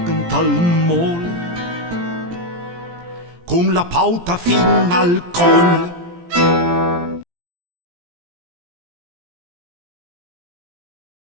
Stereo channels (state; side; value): late; left; 17 ms